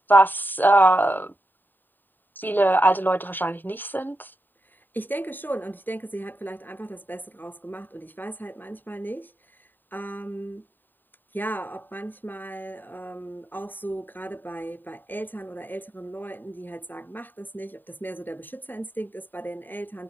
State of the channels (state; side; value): late; right; 0.091 ms